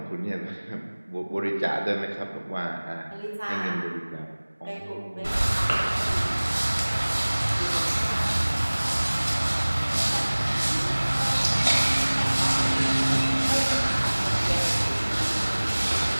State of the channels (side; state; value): both; inverted; correlation -1.00